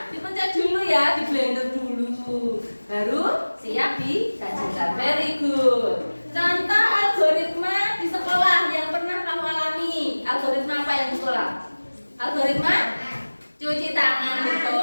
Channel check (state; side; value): inverted; both; correlation -1.00